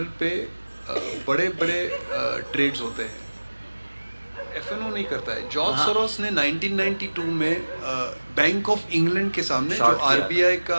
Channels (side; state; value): both; inverted; correlation -1.00